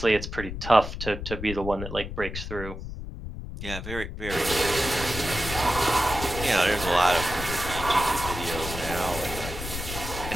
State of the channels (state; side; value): noise; left; rumble, 8 dB below the sound